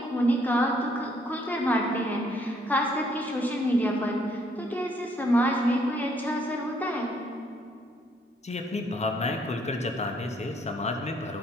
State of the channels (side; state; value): both; normal; correlation 0.67